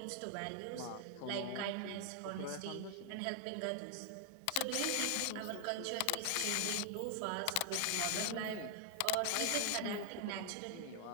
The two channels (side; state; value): both; different; correlation 0.00